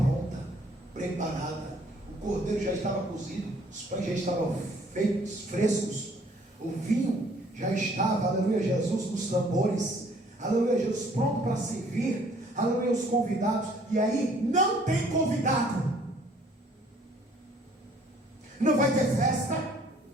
preparada, o cordeiro já estava cozido, os pães já estavam feitos, frescos, o vinho já estava, aleluia, Jesus, nos tambores, aleluia, Jesus, pronto para servir, aleluia, os convidados. E aí não tem convidado, não vai ter festa,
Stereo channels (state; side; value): normal; both; correlation 0.59